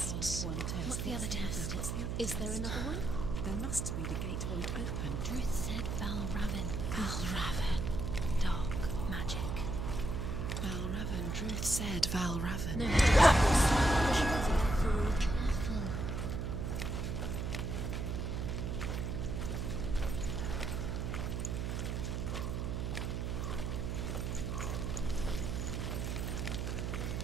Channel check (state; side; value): noise; right; hum, 2 dB below the sound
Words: passed one test. What's the other test? Is there another one? There must be. The gate won't open. Druth said Valravn. Valravn. Dark magic. Valravn. Druth said Valravn. No. Careful.